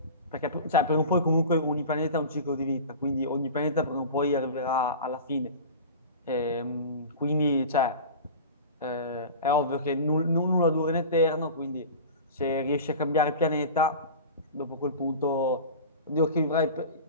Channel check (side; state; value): both; inverted; correlation -0.34